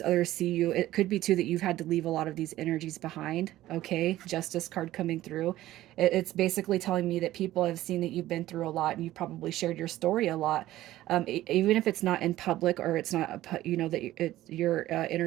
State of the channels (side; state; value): left; quieter; 15.0 dB